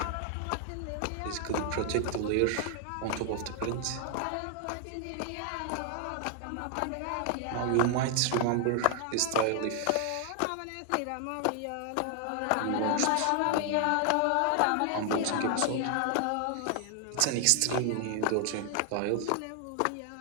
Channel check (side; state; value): both; different; correlation 0.00